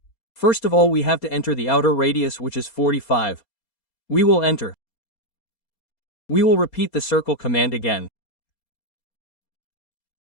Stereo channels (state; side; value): late; right; 4.3 ms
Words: First of all we have to enter the outer radius which is 45. We will enter. We will repeat the circle command again.